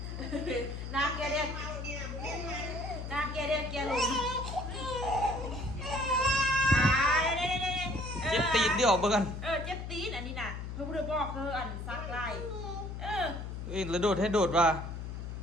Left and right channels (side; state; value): left; noise; hum, 7 dB below the sound